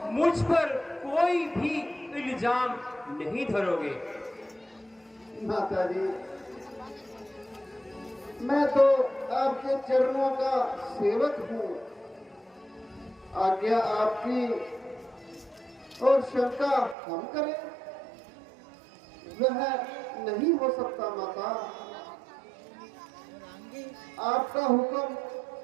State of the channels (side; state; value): left; drops out; at 16.9 s